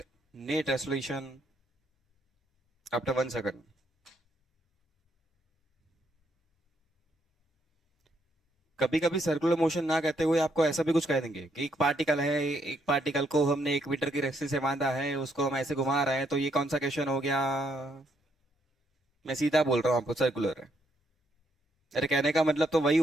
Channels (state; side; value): normal; both; correlation 0.74